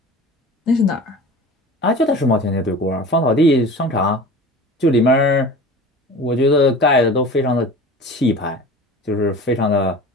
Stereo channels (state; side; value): normal; both; correlation 0.38